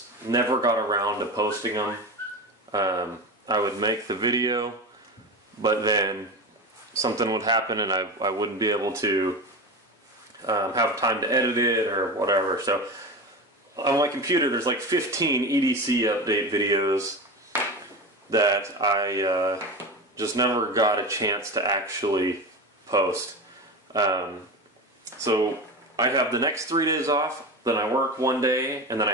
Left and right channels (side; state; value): both; normal; correlation 0.24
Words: never got around to posting them. I would make the video, but then something would happen and I wouldn't be able to have time to edit it or whatever. So on my computer there's like 15 EDC update videos that I just never got a chance to actually post. So I have the next 3 days off, then I work 1 day, and then I